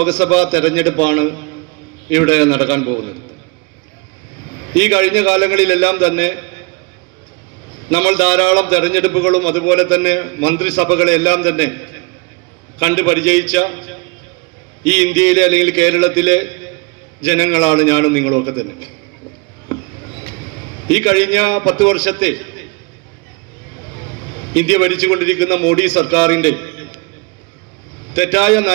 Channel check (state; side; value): quieter; left; 30.5 dB